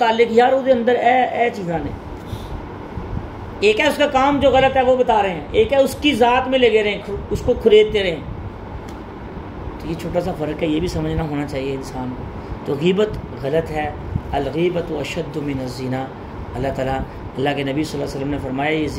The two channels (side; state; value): both; identical; correlation 1.00